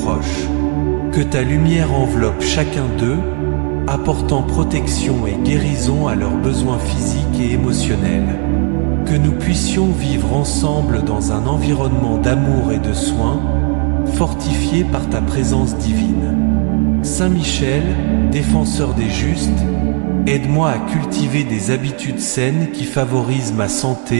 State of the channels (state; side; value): quieter; left; 39.8 dB